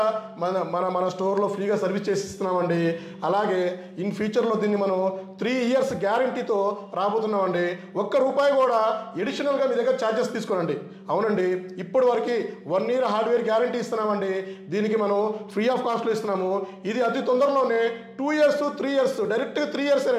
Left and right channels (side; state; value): both; identical; correlation 1.00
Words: మన స్టోర్లో ఫ్రీగా సర్వీస్ చేసి ఇస్తున్నామండి. అలాగే ఇన్ ఫ్యూచర్లో దీన్ని మనం 3 years గ్యారంటీతో రాబోతున్నామండి. ₹1 కూడా ఎడిషనల్గా మీ దగ్గర ఛార్జెస్ తీసుకోనండి. అవునండి, ఇప్పటి వరకు 1 year హార్డ్వేర్ గ్యారంటీ ఇస్తున్నామండి. దీనికి మనం ఫ్రీ ఆఫ్ కాస్ట్లో ఇస్తున్నాము. ఇది అతి తొందరలోనే 2 years 3 years డైరెక్ట్గా 3 years